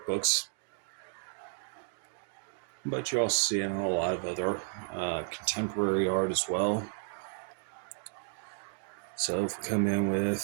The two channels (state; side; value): silent; left; digital silence